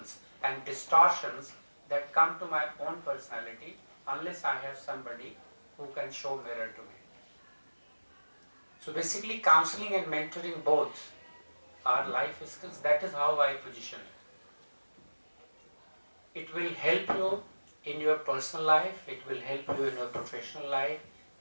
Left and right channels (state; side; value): inverted; both; correlation -1.00